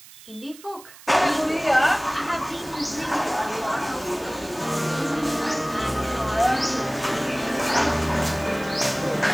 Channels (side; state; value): right; noise; hiss, 20 dB below the sound